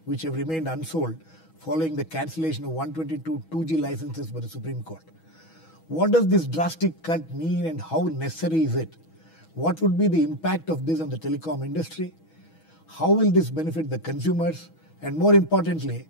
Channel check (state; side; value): late; right; 6.2 ms